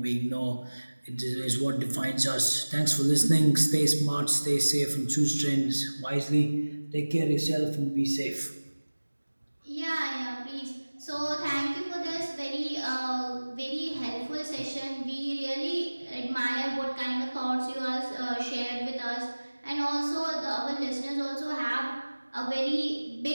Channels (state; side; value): inverted; both; correlation -1.00